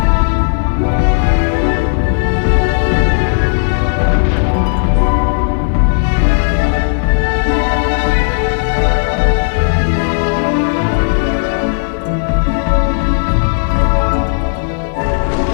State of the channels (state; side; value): silent; right; digital silence